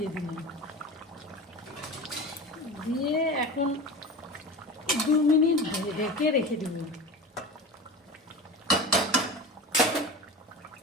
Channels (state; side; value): normal; both; correlation 0.31